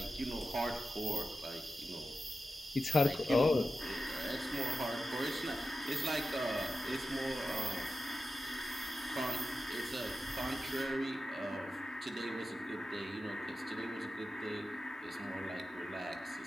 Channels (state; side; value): normal; both; correlation 0.92